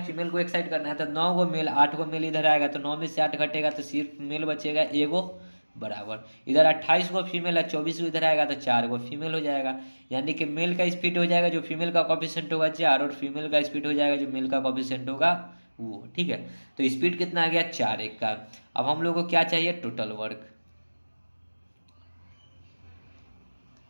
फीमेल को एक साइड करना है, तो 9 गो मेल 8 गो मेल इधर आएगा, तो 9 में से 8 घटेगा तो सिर्फ मेल बचेगा एगो बराबर। इधर 28 गो फीमेल है, 24 को इधर आएगा तो 4 गो फीमेल हो जाएगा। यानी कि मेल का स्पीड हो जाएगा जो फीमेल का कॉफिशिएंट होगा 4, और फीमेल का स्पीड हो जाएगा जो मेल का कॉफिशिएंट होगा वो, ठीक है। तो स्पीड कितना आ गया 4 1 का। अब हम लोग को क्या चाहिए, टोटल वर्क।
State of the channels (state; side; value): inverted; both; correlation -1.00